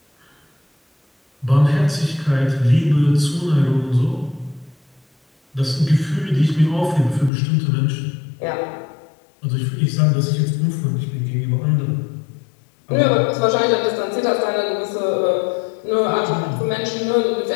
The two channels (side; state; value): right; drops out; at 7.3 s